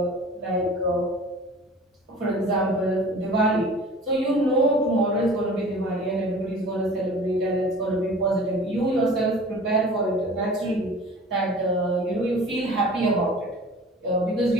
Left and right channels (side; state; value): both; normal; correlation 0.43